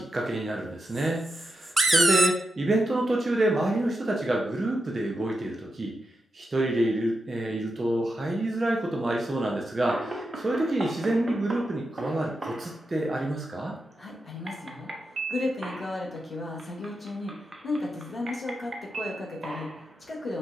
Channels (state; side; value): normal; both; correlation 0.87